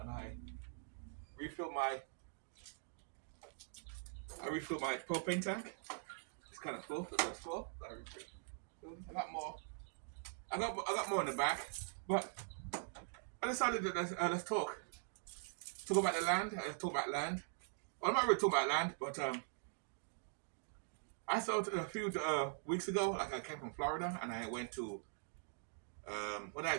refill my I refill my propane tank. It's kind of full, it's full. I refill. I got more. I got more in the back, but I decided that let's talk about the land. Let's talk about land. Well, I'm not really talking about land, but I thought a few weeks ago, like I came from Florida and I went to where did I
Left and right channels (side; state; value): left; silent; digital silence